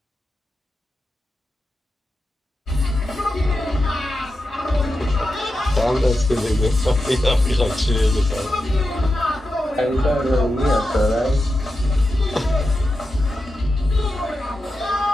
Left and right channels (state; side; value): normal; both; correlation 0.89